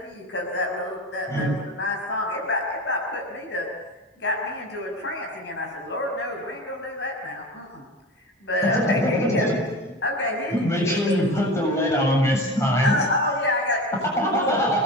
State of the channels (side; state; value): both; normal; correlation 0.30